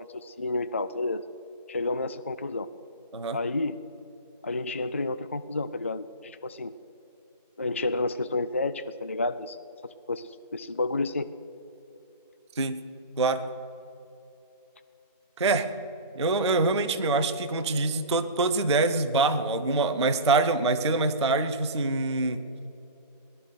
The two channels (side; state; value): both; inverted; correlation -0.31